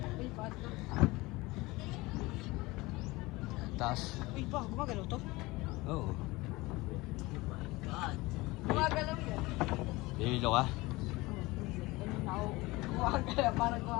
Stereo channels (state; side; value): quieter; right; 21.5 dB